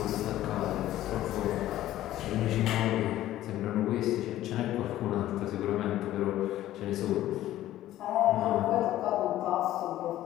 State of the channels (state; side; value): quieter; right; 14.0 dB